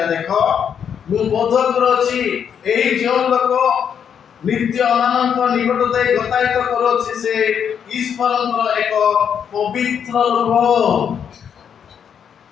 ଦେଖ ମୁଁ ବୋଧ କରୁଅଛି ଏହି ଯେଉଁ ଲୋକ ନିତ୍ୟ ମାନଙ୍କ ନିକଟ ଦେଇ ଗତାୟତ କରୁଅଛି, ସେ ଈଶ୍ୱରଙ୍କର ଏକ ପବିତ୍ର ଲୋକ।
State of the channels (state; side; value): quieter; right; 7.9 dB